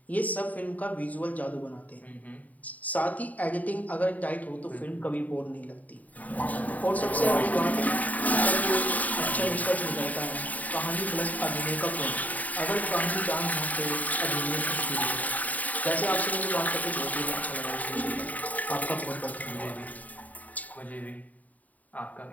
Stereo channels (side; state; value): right; late; 0.074 ms